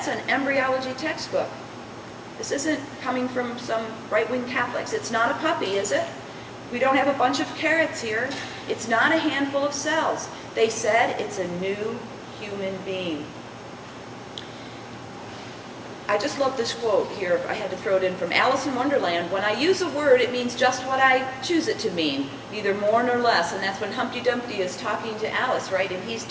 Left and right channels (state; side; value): identical; both; correlation 1.00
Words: an embryology textbook. This isn't coming from some right-wing Catholics. It's not a puppy, is it? We don't have a bunch of carrots here. It's not a handful of cells. They said it's a new human being. just love this quote here. I had to throw it in from Alice in Wonderland. When I use a word, it means just what I choose it to mean, neither more nor less. And that's when Humpty Dumpty is talking to Alice, right? And he's